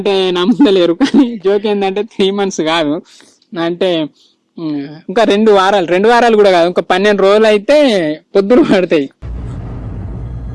నమ్మలేరు, కానీ జోక్ ఏంటంటే 3 months కాదు, అంటే ఇంకా 2 వారాలు కూడా కాదు, ఇంకా 12 రోజులు అయితే పొద్దులు పడతాయి.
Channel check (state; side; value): identical; both; correlation 1.00